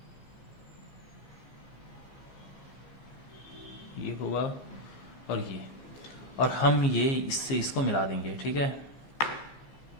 ये हुआ और ये, और हम ये इससे इसको मिला देंगे, ठीक है।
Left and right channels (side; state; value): right; late; 15 ms